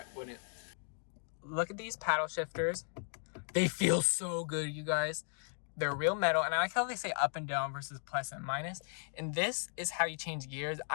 it wouldn't. Look at these paddle shifters. They feel so good, you guys. They're real metal, and I like how they say up and down versus plus and minus. And this is how you change gears.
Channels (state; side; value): silent; right; 54 dB below the other